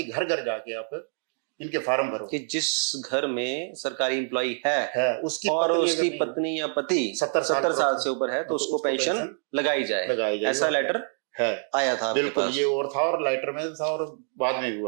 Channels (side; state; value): left; silent; 61 dB below the other